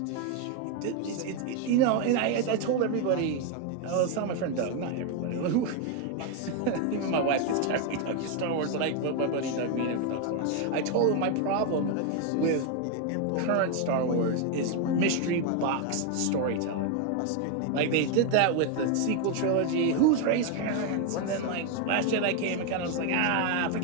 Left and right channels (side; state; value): both; different; correlation 0.01